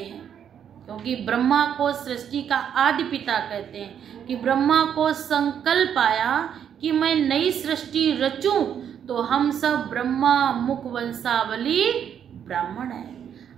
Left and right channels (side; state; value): left; quieter; 8.7 dB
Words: क्योंकि ब्रह्मा को सृष्टि का आदि पिता कहते हैं कि ब्रह्मा को संकल्प आया कि मैं नई सृष्टि रचूं, तो हम सब ब्रह्मा मुख वंशावली ब्राह्मण है,